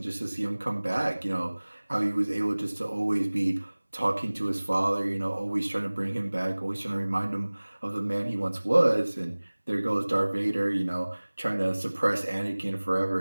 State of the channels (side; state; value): both; inverted; correlation -1.00